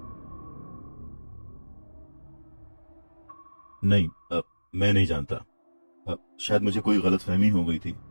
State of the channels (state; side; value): inverted; both; correlation -1.00